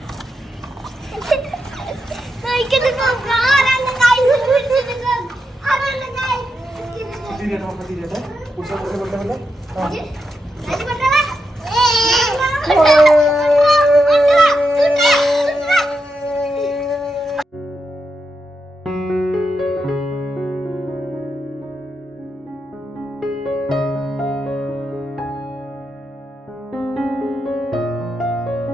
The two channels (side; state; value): both; normal; correlation 0.85